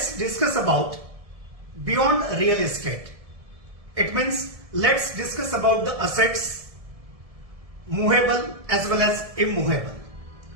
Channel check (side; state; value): left; late; 1.7 ms